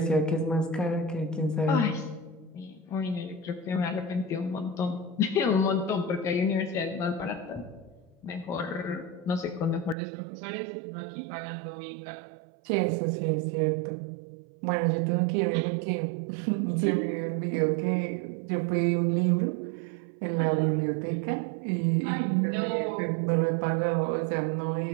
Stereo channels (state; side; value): drops out; left; at 10.0 s